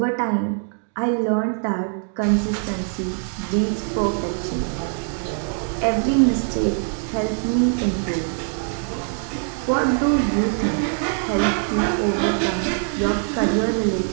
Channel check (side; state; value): left; silent; 55 dB below the other